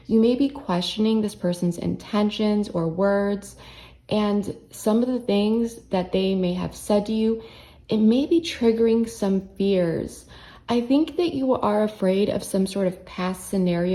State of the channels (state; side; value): identical; both; correlation 1.00